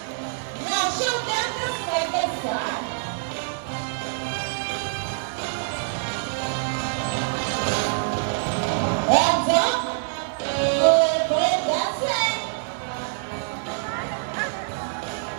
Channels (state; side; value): silent; left; 62 dB below the other